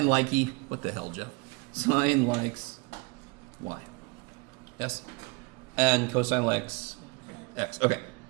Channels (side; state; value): left; quieter; 27.3 dB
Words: likey, what the hell, Jeff? Sine likes y. Yes? And cosine likes x. Okay.